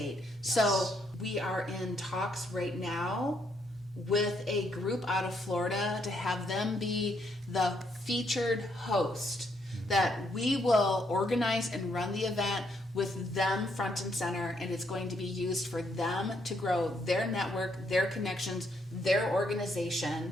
Yes. So we are in talks right now with a group out of Florida to have them be the featured host, that we will organize and run the event with them front and center, and it's going to be used for them to grow their network, their connections, their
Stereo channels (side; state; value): both; normal; correlation 0.74